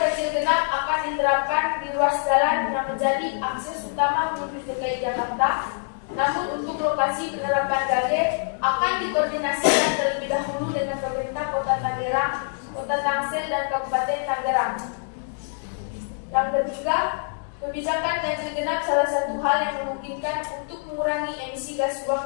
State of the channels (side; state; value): right; silent; digital silence